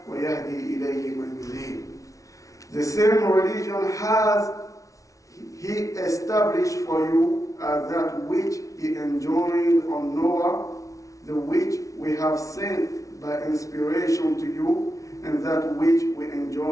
ويهدي إليه من ينيب. The same religion has He established for you that which He enjoined on Noah, the which we have sent by inspiration to you, and that which we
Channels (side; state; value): right; late; 0.16 ms